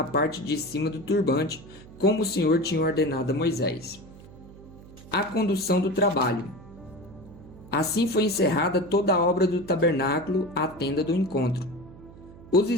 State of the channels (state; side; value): noise; right; hum, 19 dB below the sound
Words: parte de cima do turbante, como o Senhor tinha ordenado a Moisés. A condução do trabalho. Assim foi encerrada toda a obra do tabernáculo, a tenda do encontro. Os